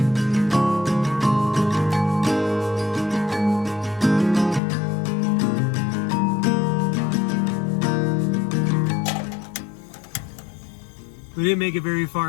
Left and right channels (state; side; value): drops out; right; at 4.6 s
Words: We didn't make it very